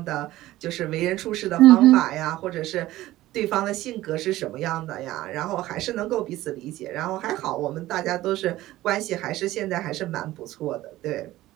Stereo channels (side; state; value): left; quieter; 16.1 dB